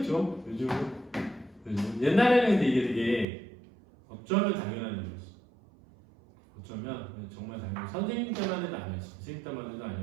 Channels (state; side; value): drops out; left; at 3.2 s